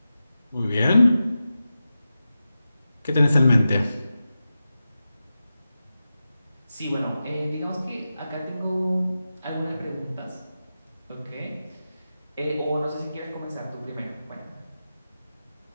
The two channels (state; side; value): inverted; both; correlation -0.92